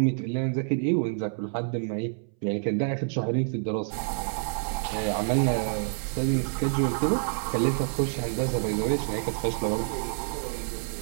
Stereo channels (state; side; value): silent; left; 60 dB below the other